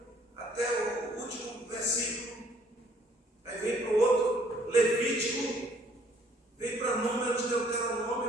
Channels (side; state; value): both; normal; correlation 0.62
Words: até o último versículo. Aí vem para o outro, Levítico, vem para Números, Deuteronômio,